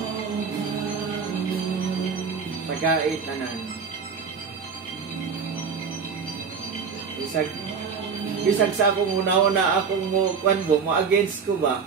pagkait na nan. Bisag sa akong una-una akong mo against ko ba?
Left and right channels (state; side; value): quieter; left; 5.9 dB